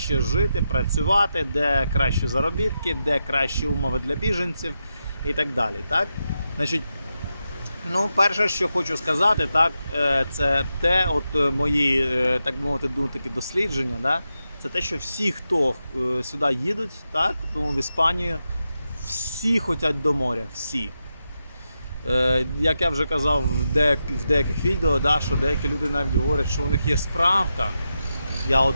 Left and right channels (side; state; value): both; inverted; correlation -0.87